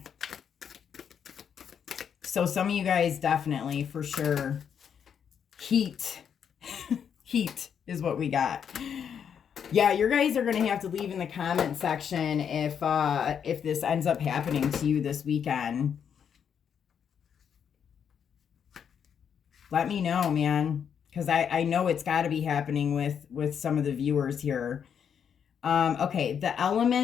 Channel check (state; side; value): quieter; right; 7.8 dB